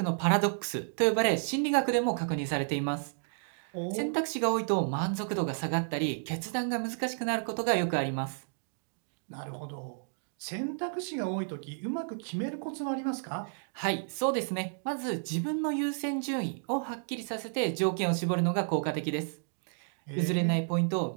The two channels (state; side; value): silent; left; digital silence